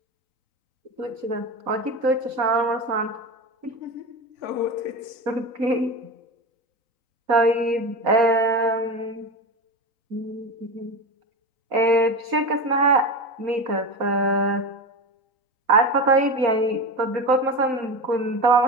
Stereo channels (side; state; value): left; late; 3.9 ms